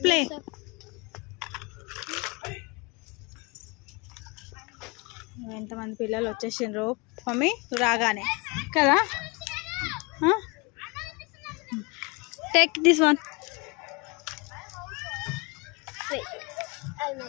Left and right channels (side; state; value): right; quieter; 28.4 dB